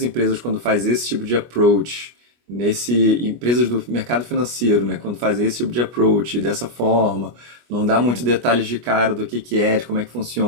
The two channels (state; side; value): late; left; 25 ms